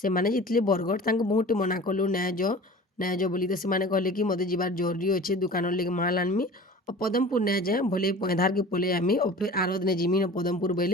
ଯାଇଥିଲେ ବରଗଡ଼ ତାଙ୍କୁ ବହୁତ ମନା କଲୁ ନାଇଁ ଯ ବୋଲି ତ ସେମାନେ କହିଲେ କି ମୋତେ ଯିବାର ଜରୁରୀ ଅଛେ ଦୋକାନର ଲାଗି ମାଲ ଆନମି ଆଉ ପଦମପୁର ନାଇଁ ଯାଏ ଭଲେ ପଇଁଧାରକେ ପଲେଇ ଆମି ଆଉ ଫେର୍ ଆର ଦିନେ ଯିମି ପଦମପୁର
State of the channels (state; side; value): normal; both; correlation 0.40